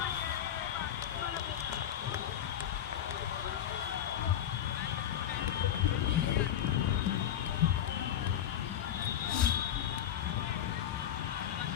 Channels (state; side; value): quieter; right; 10.3 dB